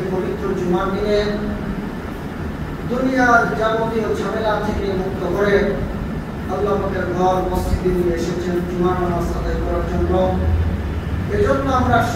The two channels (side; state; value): both; identical; correlation 1.00